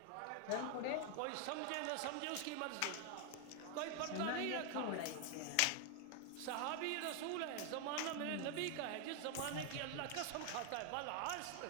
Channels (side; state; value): both; different; correlation 0.01